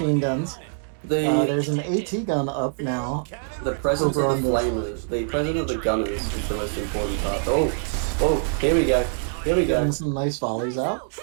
guns. There's an AT gun up now. The presence over of the on flamers, the presence of the gunners is the most important part. Oh, here we go. Here we go. Getting some nice volleys out.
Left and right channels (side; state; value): left; silent; digital silence